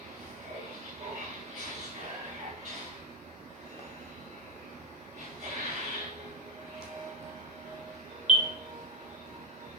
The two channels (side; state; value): both; normal; correlation 0.11